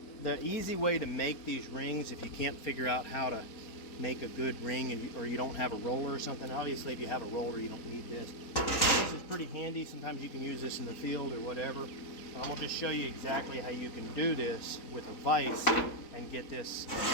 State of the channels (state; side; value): late; right; 4.1 ms